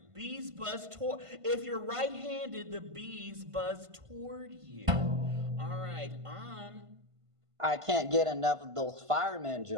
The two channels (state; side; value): late; left; 1.5 ms